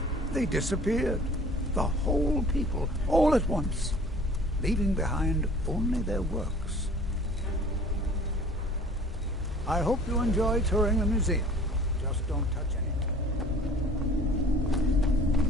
they disappeared. The whole people, all at once, leaving behind only their works. I hope you enjoy touring the museum. Just don't touch anything.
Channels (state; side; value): normal; both; correlation 0.48